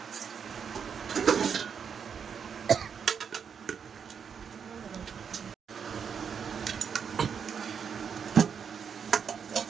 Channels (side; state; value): left; quieter; 7.0 dB